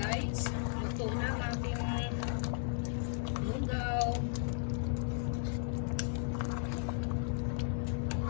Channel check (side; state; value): right; silent; 54 dB below the other